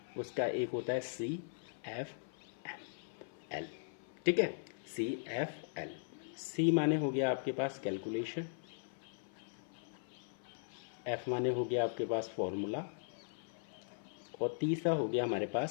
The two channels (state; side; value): silent; right; 52 dB below the other